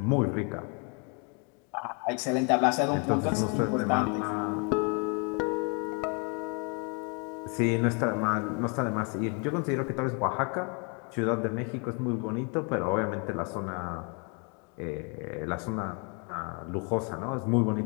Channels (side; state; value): right; quieter; 36.2 dB